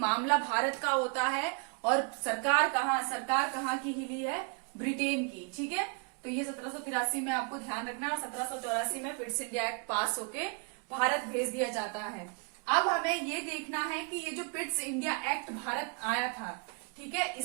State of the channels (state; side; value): quieter; left; 36.3 dB